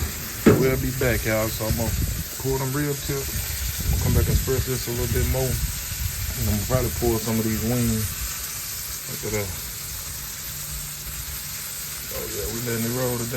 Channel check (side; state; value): both; identical; correlation 1.00